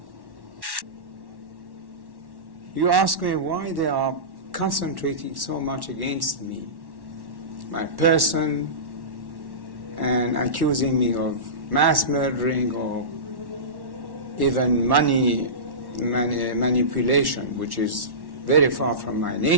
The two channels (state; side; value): late; left; 1.1 ms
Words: You ask me why they are concentrating so much against me, my person, and accusing me of mass murdering or even money manipulation, which is very far from my